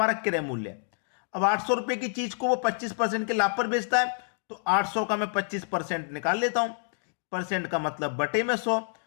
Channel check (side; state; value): right; silent; digital silence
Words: क्रय मूल्य है। अब 800 रुपए की चीज को वो 25% के लाभ पर बेचता है, तो 800 का मैं 25% निकाल लेता हूं। परसेंट का मतलब बटे में 100,